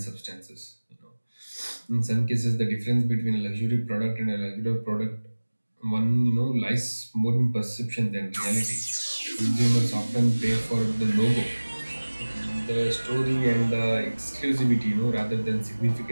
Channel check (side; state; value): both; inverted; correlation -1.00